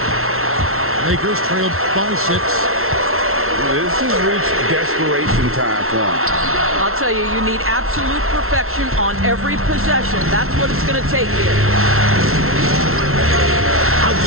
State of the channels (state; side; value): late; left; 0.62 ms